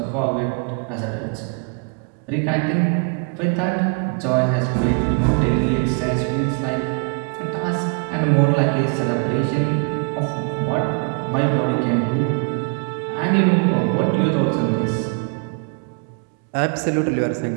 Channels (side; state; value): left; quieter; 37.2 dB